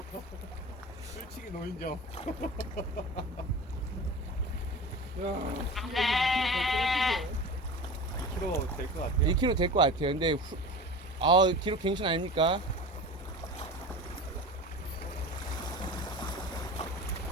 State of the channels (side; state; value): both; normal; correlation 0.34